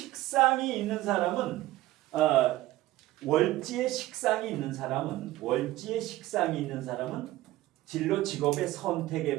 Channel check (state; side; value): quieter; left; 16.6 dB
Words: 있는 사람은 진로 직업의